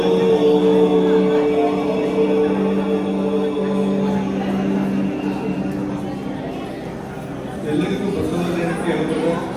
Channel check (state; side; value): identical; both; correlation 1.00